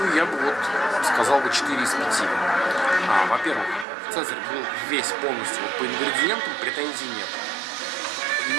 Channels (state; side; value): drops out; left; at 3.9 s